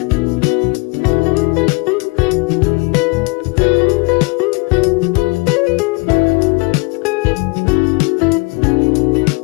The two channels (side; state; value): right; quieter; 28.9 dB